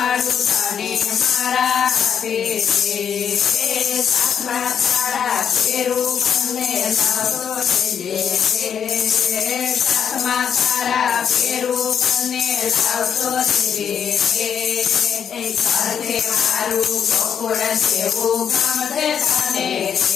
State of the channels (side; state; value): right; quieter; 7.9 dB